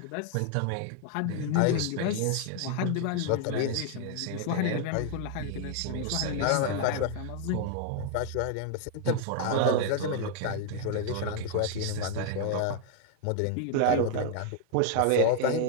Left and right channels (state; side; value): different; both; correlation 0.00